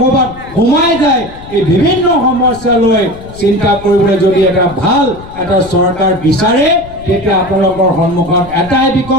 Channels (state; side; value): noise; left; rumble, 17 dB below the sound